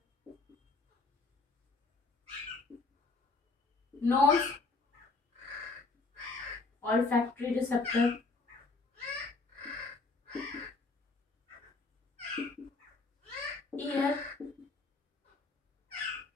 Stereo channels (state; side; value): quieter; right; 3.7 dB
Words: nose, olfactory receptor, ear,